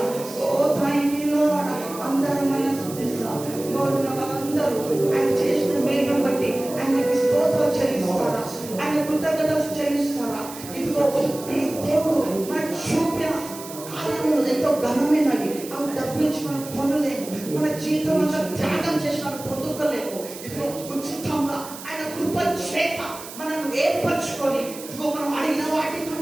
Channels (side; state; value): right; noise; hiss, 14 dB below the sound